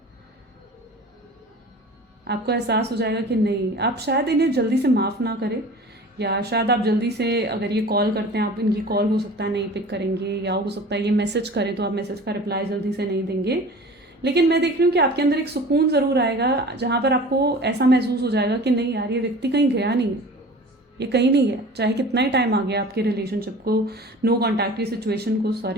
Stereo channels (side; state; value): both; normal; correlation 0.41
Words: आपको एहसास हो जाएगा कि नहीं, आप शायद इन्हें जल्दी से माफ़ ना करें, या शायद आप जल्दी से अगर ये कॉल करते हैं आप इनकी कॉल हो सकता है नहीं पिक करेंगे, या हो सकता है ये मैसेज करें तो आप मैसेज का रिप्लाई जल्दी से नहीं देंगे। लेकिन मैं देख रही हूँ कि आपके अंदर एक सुकून ज़रूर आएगा जहाँ पर आपको ऐसा महसूस हो जाएगा कि नहीं यार ये व्यक्ति कहीं गया नहीं है, ये कहीं नहीं है, चाहे कितना ही टाइम आ गया आपके रिलेशनशिप को, नो कॉन्टैक्ट की सिचुएशन को,